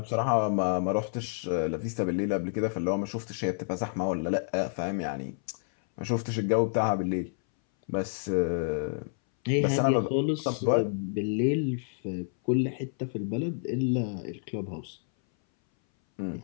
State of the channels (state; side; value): silent; right; 58 dB below the other